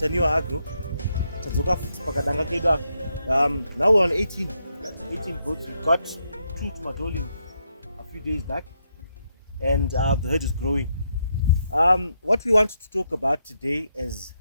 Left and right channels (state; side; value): inverted; both; correlation -0.80